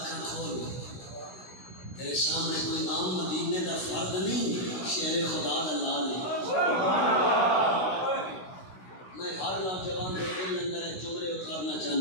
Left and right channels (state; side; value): late; right; 16 ms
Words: کھول تیرے سامنے کوئی عام مدینے دا فرد نہیں شیر خدا دا لال ہے میں ہر نوجوان کے دل اندر ایک جملے اتارنا